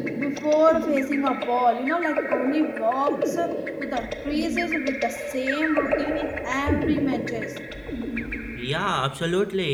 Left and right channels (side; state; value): both; identical; correlation 1.00